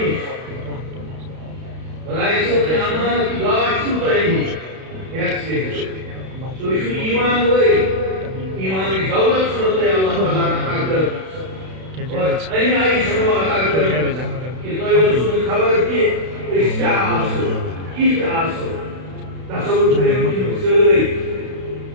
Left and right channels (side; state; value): left; late; 32 ms